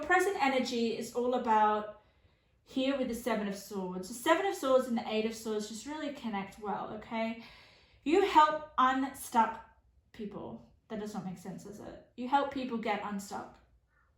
present energy is all about here with the Seven of Swords. The Seven of Swords and the Eight of Swords just really connect well, okay? You help unstuck people. That does not make sense, does it? You help people get unstuck.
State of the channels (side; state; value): both; identical; correlation 1.00